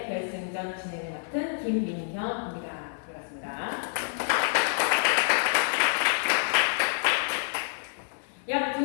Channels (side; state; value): right; silent; digital silence